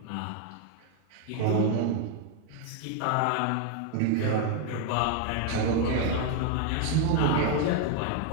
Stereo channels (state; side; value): different; both; correlation 0.01